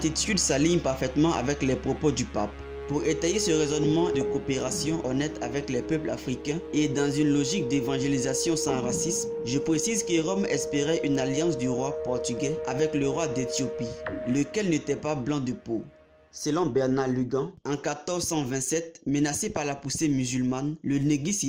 s'aligne parfaitement avec les propos du pape. Pour étayer ce raisonnement de coopération honnête avec les peuples africains et dans une logique d'évangélisation sans racisme, je précise que Rome espérait une alliance du roi portugais avec le roi d'Éthiopie, lequel n'était pas blanc de peau. Selon Bernard Lugan, en 1427, menacé par la poussée musulmane, le Negus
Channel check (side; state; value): both; identical; correlation 1.00